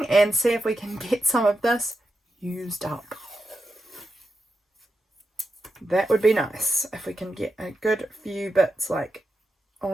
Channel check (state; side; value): normal; both; correlation 0.87